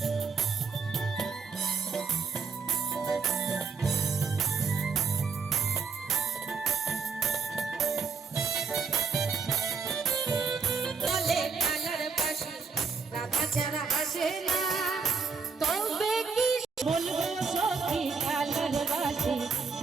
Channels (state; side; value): quieter; left; 5.2 dB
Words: যারা হাসে না তবে কি বলবো সখী কালার বাসি